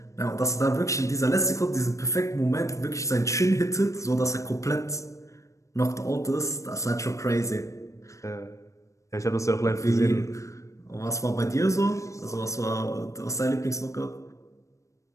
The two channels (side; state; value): right; late; 0.15 ms